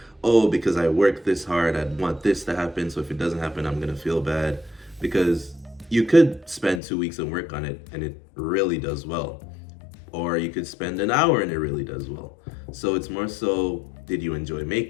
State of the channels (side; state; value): right; drops out; at 6.8 s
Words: oh, because I worked this hard, I'd want this to happen, so if it doesn't happen, I'm gonna feel bad. Because you could spend 2 weeks and work on it and it really does well. Or you could spend an hour and it really does well. So it's more so, did you enjoy